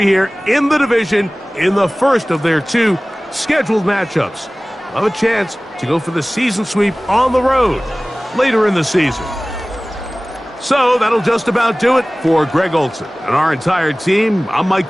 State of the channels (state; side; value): normal; both; correlation 0.98